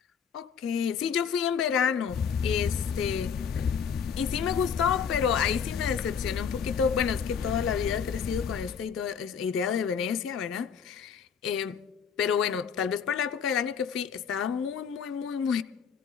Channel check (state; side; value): quieter; right; 7.0 dB